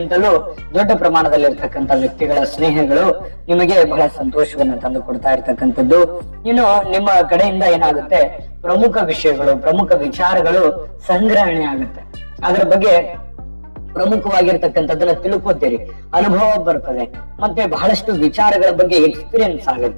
ದೊಡ್ಡ ಪ್ರಮಾಣದಲ್ಲಿ ಇರ್ತಕ್ಕಂಥ ವ್ಯಕ್ತಿಗಳ ಸ್ನೇಹಗಳು ನಿಮಗೆ ಬಹಳ ಸಂತೋಷವನ್ನು ತಂದು ಕೊಡ್ತಾ ಇರ್ತಕ್ಕಂಥದ್ದು. ಇನ್ನು ನಿಮ್ಮ ಕಡೆಯಿಂದ ಏನಾಗುತ್ತೆ, ಪ್ರಮುಖ ವಿಷಯಗಳು, ಪ್ರಮುಖ ವಿಚಾರಗಳು ಸಂಗ್ರಹಣೆ ಆಗುತ್ತೆ. ಅದರ ಬಗ್ಗೆ ಪ್ರಮುಖವಾಗಿರ್ತಕ್ಕಂಥದ್ದನ್ನ ತಿಳ್ಕೊತೀರಿ, ಅನುಭವ ಬರ್ತದೆ, ಮತ್ತೆ ಬಹಳಷ್ಟು ವಿಚಾರಗಳ ಬಗ್ಗೆ ಎಕ್ಸ್ಪೀರಿಯನ್ಸ್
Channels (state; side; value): inverted; both; correlation -1.00